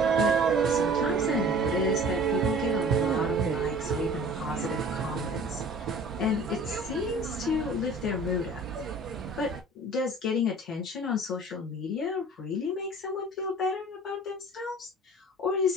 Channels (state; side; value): normal; both; correlation 0.45